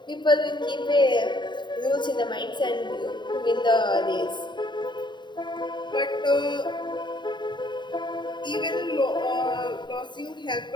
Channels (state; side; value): late; right; 0.22 ms